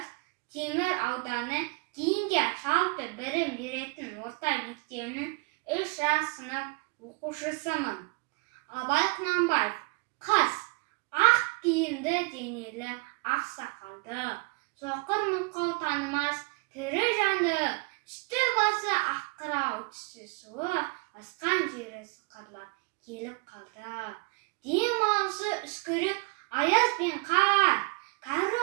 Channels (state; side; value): quieter; left; 30.5 dB